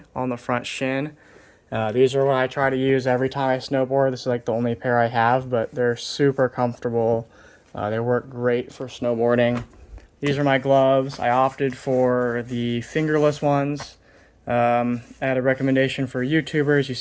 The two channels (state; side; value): identical; both; correlation 1.00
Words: on the front shin. These are what I try to use every time I snowboard. This is like the only pair I have, but they're super comfortable. They work great for snowboarding. These are my gloves. I opted for the fingerless ones. I had a recommendation for YouTubers. You